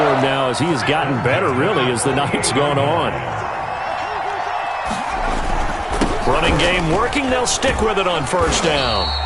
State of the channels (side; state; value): both; identical; correlation 1.00